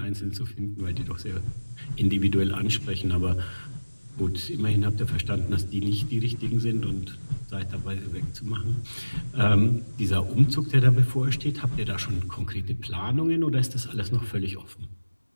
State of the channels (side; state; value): both; inverted; correlation -1.00